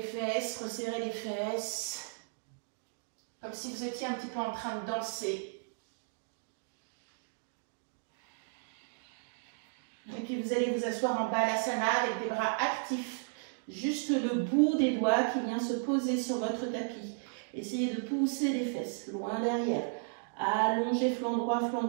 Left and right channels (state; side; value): silent; left; digital silence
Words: fesses, resserrez les fesses, comme si vous étiez un petit peu en train de danser. Et puis vous allez vous asseoir en balasana avec des bras actifs. Juste le bout des doigts qui vient se poser sur votre tapis. Essayez de pousser les fesses loin derrière. Allongez flanc droit, flanc